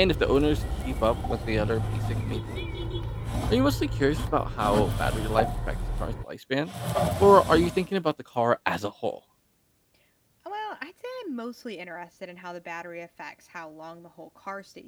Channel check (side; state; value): both; identical; correlation 1.00